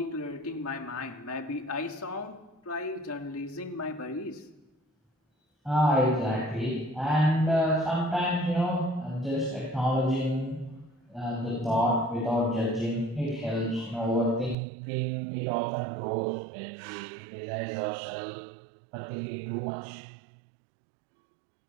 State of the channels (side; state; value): left; drops out; at 14.6 s